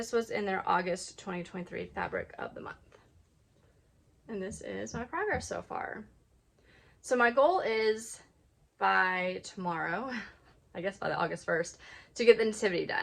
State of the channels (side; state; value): both; identical; correlation 1.00